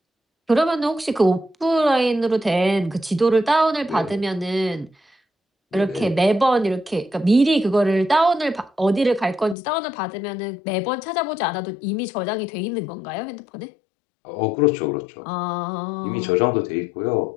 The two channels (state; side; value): drops out; right; at 9.6 s